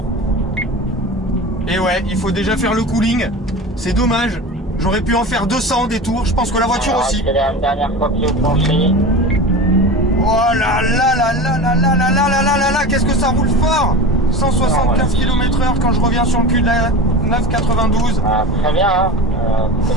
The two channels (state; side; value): normal; both; correlation 0.31